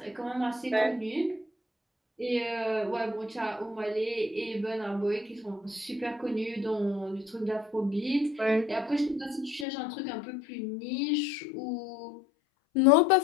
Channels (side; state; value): right; drops out; at 9.7 s